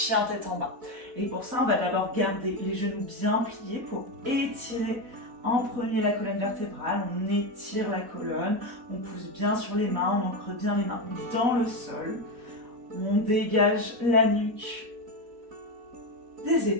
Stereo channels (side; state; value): left; late; 4.1 ms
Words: tête en bas. Et pour ça, on va d'abord garder les genoux bien pliés pour étirer en premier la colonne vertébrale. On étire la colonne, on pousse bien sur les mains, on ancre bien les mains dans le sol. On dégage la nuque des